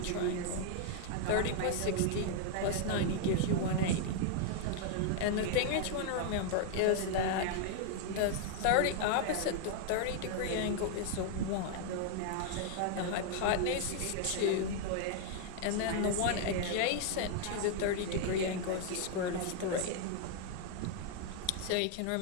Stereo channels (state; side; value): different; both; correlation 0.00